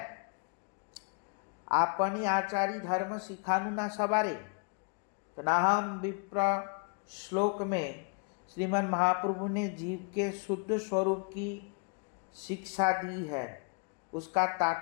आपनी आचारी धर्म सिखानु ना सवारे। तो नाहम विप्र श्लोक में श्रीमन महाप्रभु ने जीव के शुद्ध स्वरूप की शिक्षा दी है। उसका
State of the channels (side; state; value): right; quieter; 38.1 dB